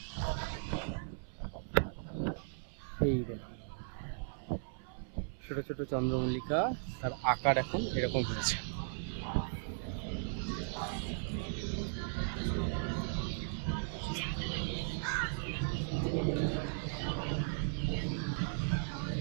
এই দেখুন ছোট ছোট চন্দ্রমল্লিকা, তার আকার এখন এরকম হয়েছে।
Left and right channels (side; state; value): left; silent; 53 dB below the other